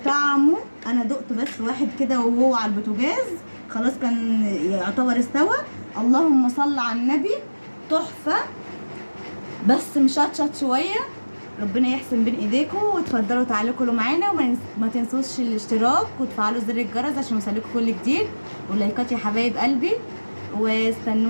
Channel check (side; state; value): both; inverted; correlation -1.00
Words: انا دقت بس واحد كده وهو على البوتاجاز خلاص كان يعتبر استوى. اللهم صل على النبي، تحفه بس مشطشط شويه. ربنا يحسن بين ايديكم، وتفضلوا تعالوا كلوا معانا، وما تنسوش الاشتراك وتفعلوا زر الجرس عشان يوصلكم كل جديد، ولايكات يا حبايب قلبي،